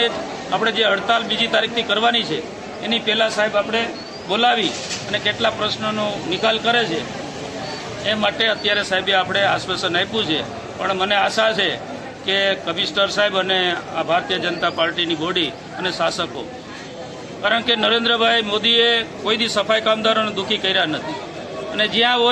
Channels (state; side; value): identical; both; correlation 1.00